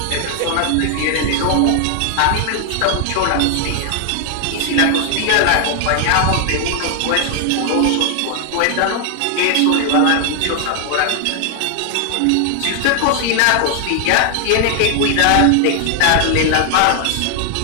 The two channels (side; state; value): both; different; correlation 0.00